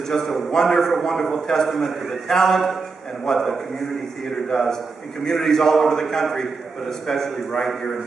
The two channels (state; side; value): quieter; left; 4.4 dB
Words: just a wonderful, wonderful testament to the talent and what the community theater does in communities all over the country, but especially right here in